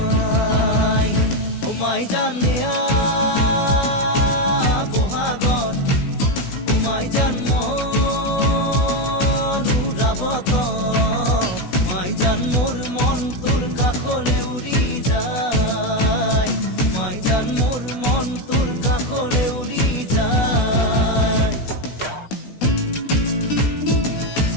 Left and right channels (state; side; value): late; right; 16 ms